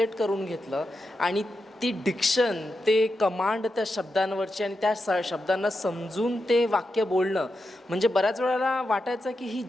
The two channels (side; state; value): both; normal; correlation 0.88